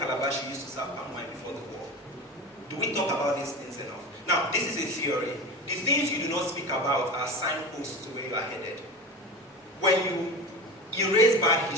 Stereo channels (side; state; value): both; normal; correlation 0.29